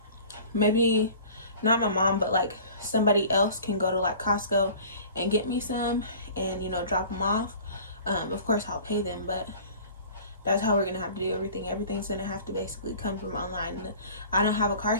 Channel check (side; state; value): both; inverted; correlation -0.44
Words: maybe not my mom, but like somebody else can go to like Costco and get me some and, you know, drop them off. Of course I'll pay them, but that's how we're gonna have to do everything. Everything's gonna have to basically come from online. I don't have a car